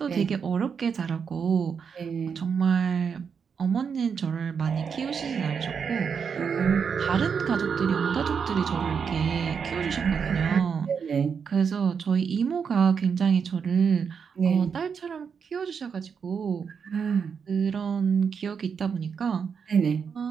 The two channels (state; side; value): quieter; left; 6.5 dB